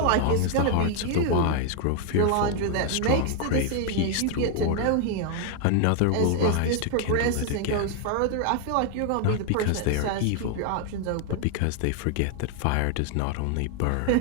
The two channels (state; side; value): different; both; correlation 0.00